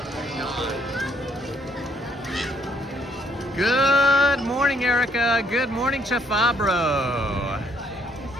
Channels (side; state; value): both; normal; correlation 0.68